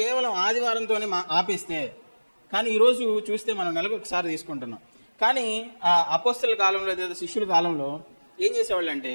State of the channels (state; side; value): inverted; both; correlation -1.00